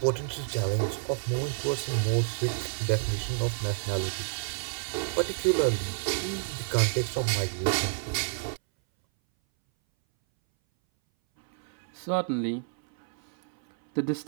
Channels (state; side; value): silent; left; 58 dB below the other